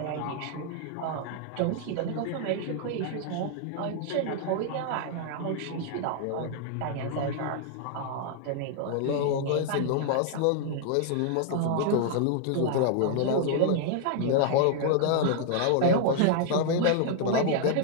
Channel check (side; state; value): both; different; correlation -0.01